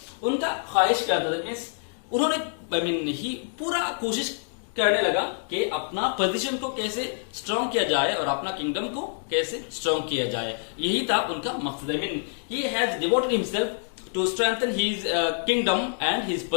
उनका ख्वाहिश क्या था? मीन्स उन्होंने he पूरा कोशिश करने लगा कि अपना पोजीशन को कैसे स्ट्रॉन्ग किया जाए और अपना किंगडम को कैसे स्ट्रॉन्ग किया जाए. यही था उनका मकसद. He has devoted himself to strengthen his kingdom and his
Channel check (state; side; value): silent; right; digital silence